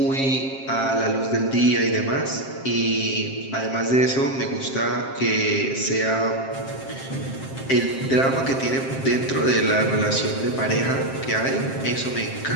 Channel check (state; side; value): late; right; 7.5 ms